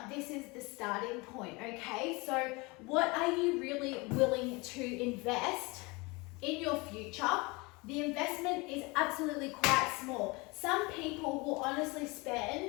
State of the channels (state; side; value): quieter; right; 25.8 dB